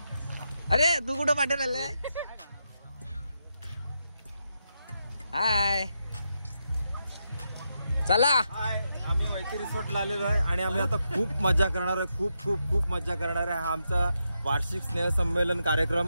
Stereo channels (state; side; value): inverted; both; correlation -0.84